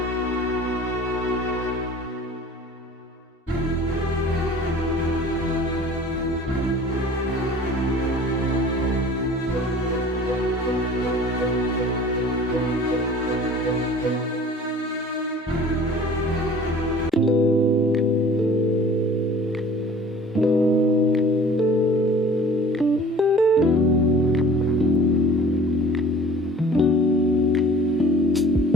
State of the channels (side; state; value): both; normal; correlation 0.47